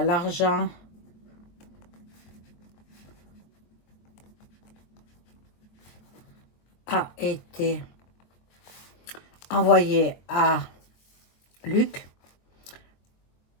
l'argent a été envoyé à Luc,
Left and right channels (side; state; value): right; late; 23 ms